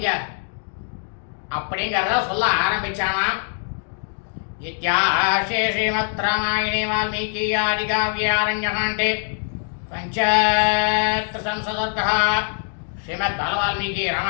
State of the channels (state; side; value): silent; right; 64 dB below the other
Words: அப்படிங்கிறத சொல்ல ஆரம்பிச்சானாம். இத்தியாசே ஸ்ரீமத் ராமாயணே வால்மீகி ஆதிகாவ்யாரண்யகாண்டே பஞ்சத்ரிசம்சதர்கः ஸ்ரீமத் பாலவால்மீகி